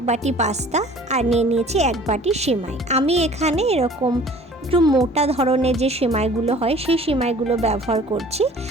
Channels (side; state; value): both; normal; correlation 0.49